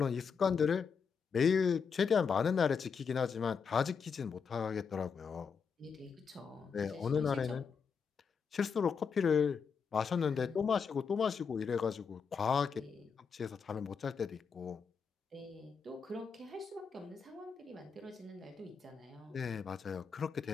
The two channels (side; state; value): right; quieter; 6.0 dB